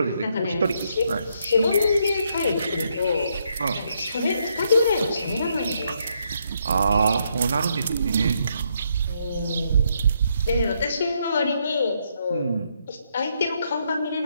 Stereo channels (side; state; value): both; inverted; correlation -0.75